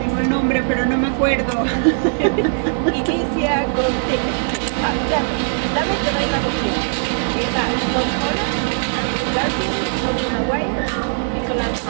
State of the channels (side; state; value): left; silent; 57 dB below the other